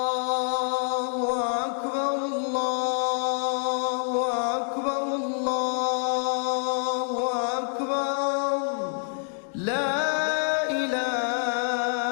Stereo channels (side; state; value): right; silent; 60 dB below the other